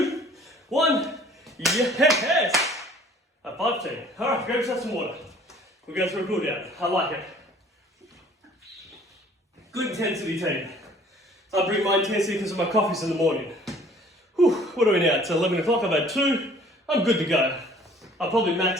1, yes! A 5 team. Alright, grab yourself some water. We'll go through a cool down. I like it. Good intensity team. I bring my intensity because of my coffees in the morning. Whew, what are we now? It's 11 o'clock, I've had 2. I'm good to go. I'll probably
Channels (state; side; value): normal; both; correlation 0.54